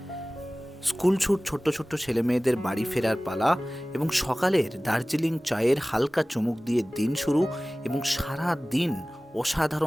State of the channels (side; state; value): both; normal; correlation 0.98